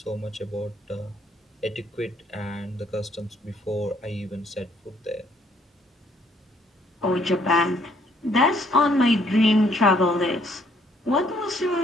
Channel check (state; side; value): normal; both; correlation 0.65